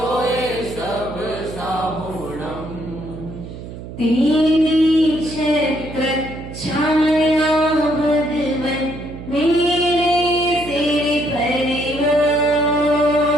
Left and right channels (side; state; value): right; noise; hum, 12 dB below the sound